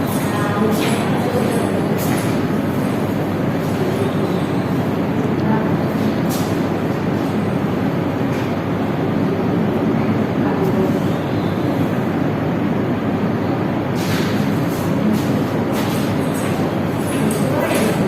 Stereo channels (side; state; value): both; identical; correlation 1.00